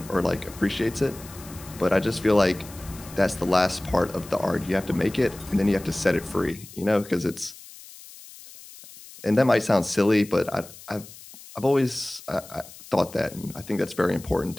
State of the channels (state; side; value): noise; left; hiss, 18 dB below the sound